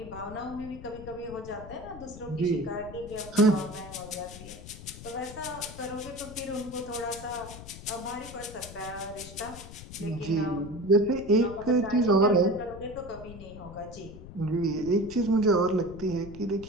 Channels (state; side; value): noise; left; rumble, 14 dB below the sound